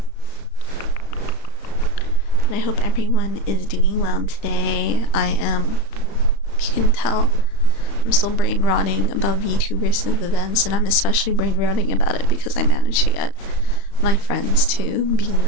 And I hope everyone is doing well today. I am, if you can tell, I'm still brain rotting about VTubers and events, and I'm especially brain rotting about it because I managed to get my friends to be in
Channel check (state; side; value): late; right; 35 ms